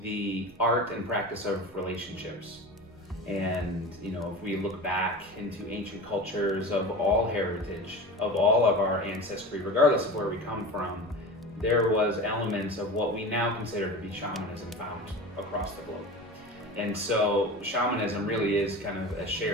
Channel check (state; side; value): normal; both; correlation 0.32